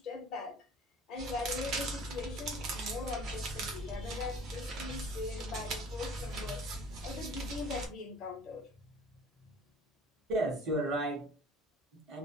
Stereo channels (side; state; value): both; normal; correlation 0.48